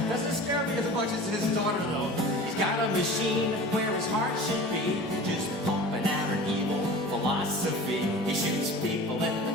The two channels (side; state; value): both; normal; correlation 0.38